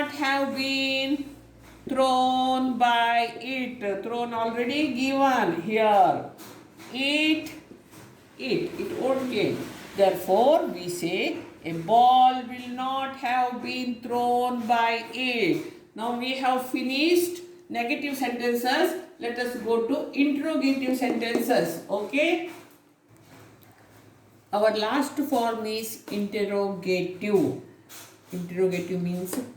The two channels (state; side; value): identical; both; correlation 1.00